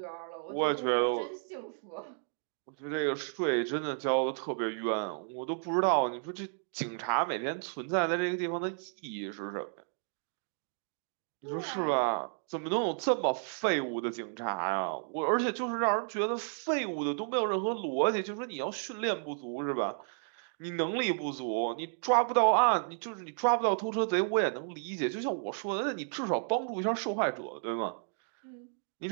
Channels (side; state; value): left; silent; digital silence